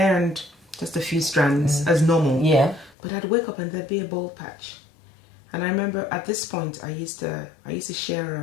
and just a few strands as normal. Yeah. But I'd wake up and there'd be a bald patch. And I remember at this point I used to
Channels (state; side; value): drops out; right; at 3.0 s